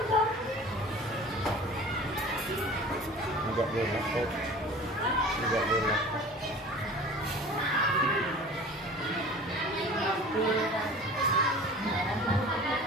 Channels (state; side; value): normal; both; correlation 0.41